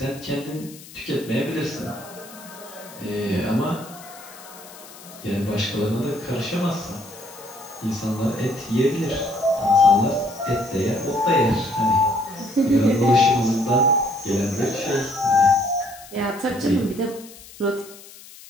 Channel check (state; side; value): noise; left; hiss, 19 dB below the sound